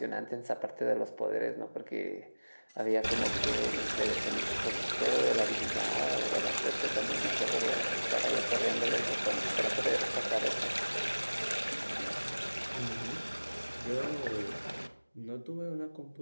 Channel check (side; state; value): both; inverted; correlation -1.00